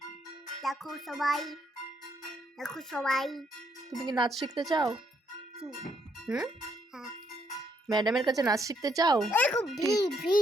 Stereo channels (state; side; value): normal; both; correlation 0.73